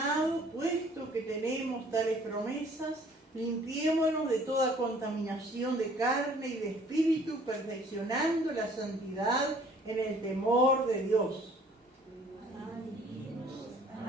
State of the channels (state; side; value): normal; both; correlation 0.56